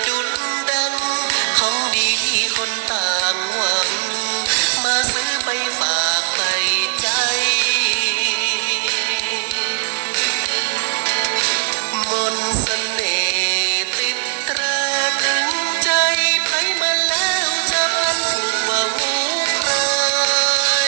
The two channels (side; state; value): left; silent; digital silence